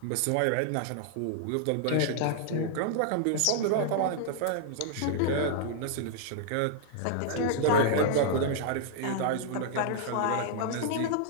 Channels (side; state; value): both; different; correlation -0.01